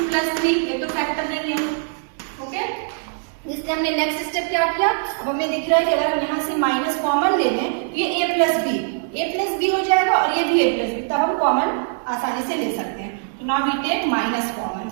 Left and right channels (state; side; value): silent; left; digital silence